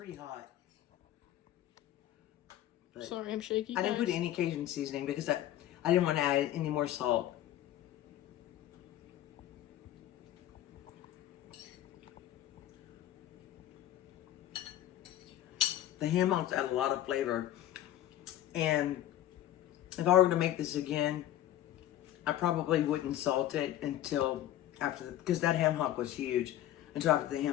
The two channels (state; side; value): quieter; right; 12.8 dB